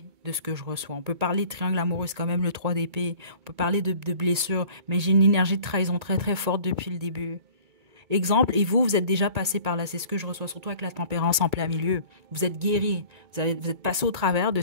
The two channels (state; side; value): late; left; 2.2 ms